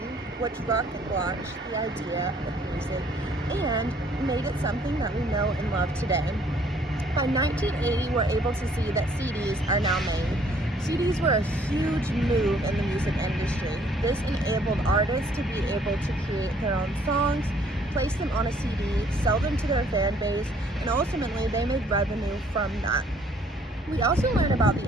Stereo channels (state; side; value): normal; both; correlation 0.61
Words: which launched the idea of music and made it something that we know and love today. By 1980, we're able to see that CDs are now made. CDs were a huge move in the music industry. This enabled artists to be able to create their own songs, place them on a CD, sell them to their fan base, and ultimately they made revenue from that. We also learn about the